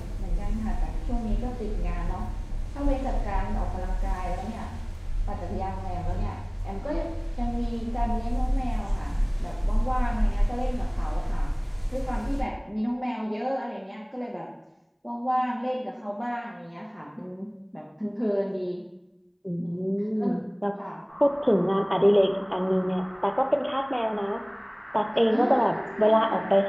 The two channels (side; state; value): both; identical; correlation 1.00